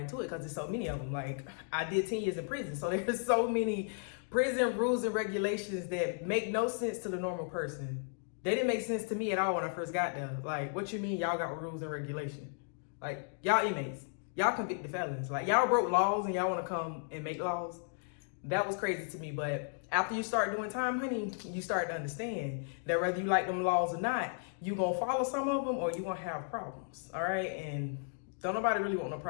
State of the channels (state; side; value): silent; right; digital silence